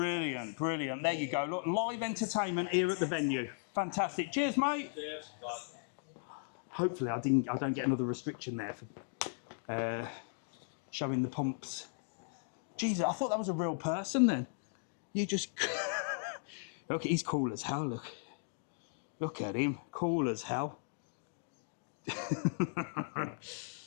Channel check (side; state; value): right; silent; digital silence